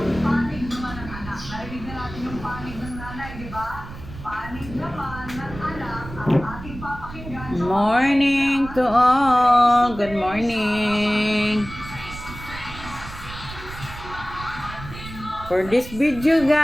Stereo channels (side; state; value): right; noise; rumble, 13 dB below the sound